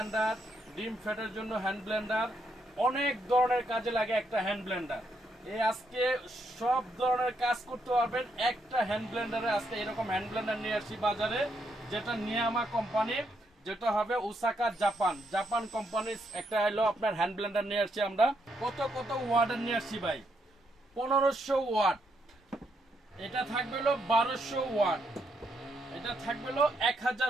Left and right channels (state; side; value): normal; both; correlation 0.77